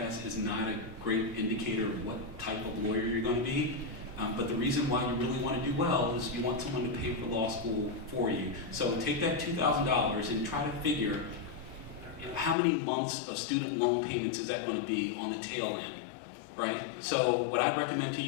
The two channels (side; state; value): right; drops out; at 12.6 s